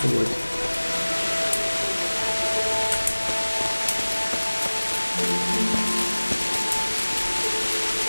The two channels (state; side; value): inverted; both; correlation -1.00